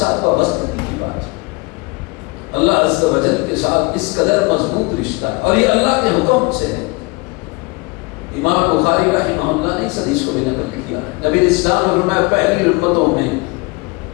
وابستگی کی بات ہے، اللہ عز و جل کے ساتھ اس قدر مضبوط رشتہ ہے، اور یہ اللہ کے حکم سے ہے۔ امام بخاری رحمہ اللہ نے اس حدیث کو بھی نقل کیا ہے، نبی اسلام نے فرمایا پہلی امتوں میں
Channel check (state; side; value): quieter; right; 26.1 dB